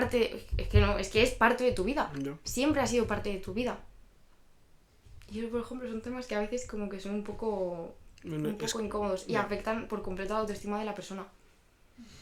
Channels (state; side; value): identical; both; correlation 1.00